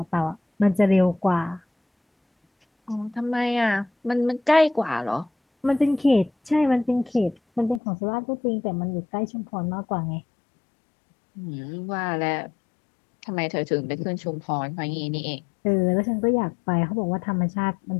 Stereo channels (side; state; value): right; drops out; at 7.8 s